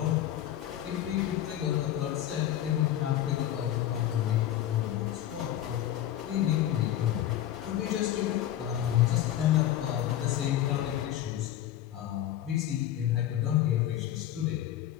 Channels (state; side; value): quieter; right; 12.1 dB